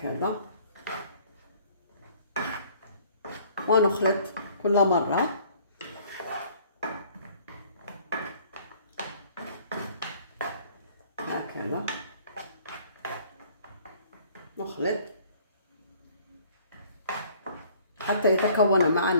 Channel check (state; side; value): inverted; both; correlation -0.56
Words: ونخلط كل مرة هكذا، نخلط حتى يتكون